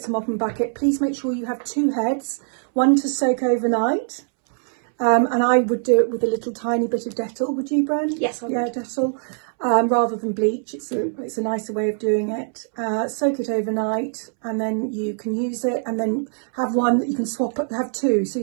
a mop and bucket. Please make sure you have 2 heads, one to soak overnight. And I would do it with a little tiny bit of Dettol. Would you, Bren? Yes, I would. Yeah, Dettol. Rather than bleach. It's a nicer way of doing it. Soak it overnight, and then you can use it, and then have one that you can swap, have 2, so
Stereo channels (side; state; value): left; silent; 64 dB below the other